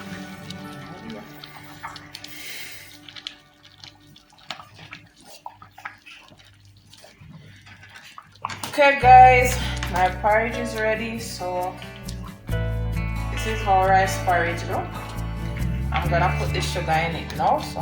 Okay guys, my porridge is ready. So this is how rice porridge look. I'm gonna put the sugar in it now, so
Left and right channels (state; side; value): identical; both; correlation 1.00